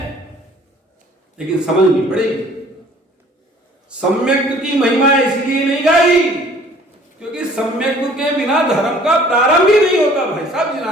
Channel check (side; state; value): both; normal; correlation 0.54